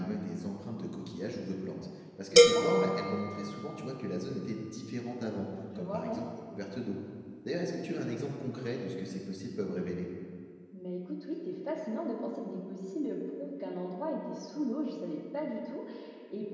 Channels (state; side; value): identical; both; correlation 1.00